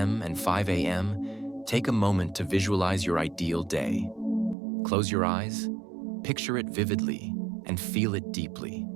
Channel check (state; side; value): drops out; left; at 4.5 s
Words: and 5 a.m., take a moment to visualize your ideal day. Close your eyes, picture it vividly, and feel it deeply.